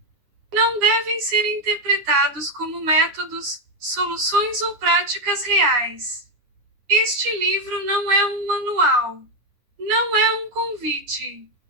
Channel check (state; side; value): late; left; 9.8 ms